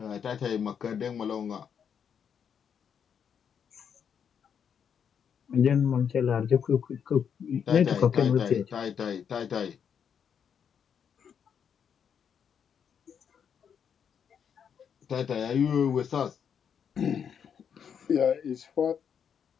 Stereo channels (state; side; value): quieter; right; 7.6 dB